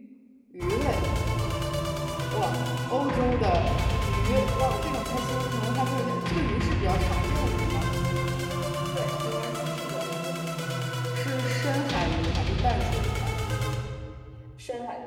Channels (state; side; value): identical; both; correlation 1.00